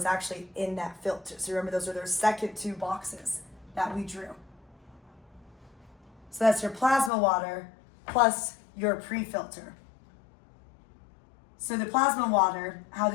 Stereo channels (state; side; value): drops out; right; at 7.1 s